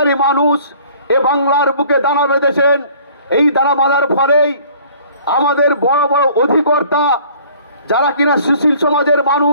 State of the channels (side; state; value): both; inverted; correlation -0.53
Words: মানুষ এ বাংলার বুকে দানা বেঁধেছেন। এই দানা বাঁধার ফলেই আমাদের বড় বড় অধিকর্তা যারা কিনা সুশীল সমাজের